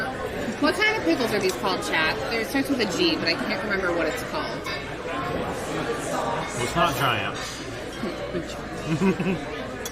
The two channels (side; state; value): both; identical; correlation 1.00